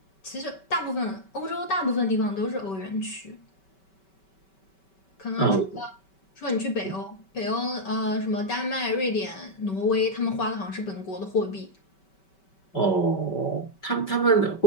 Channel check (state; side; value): late; right; 5.2 ms